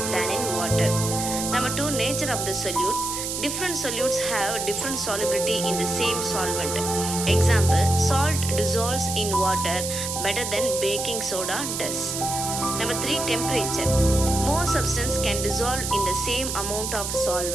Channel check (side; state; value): right; noise; hiss, 4 dB below the sound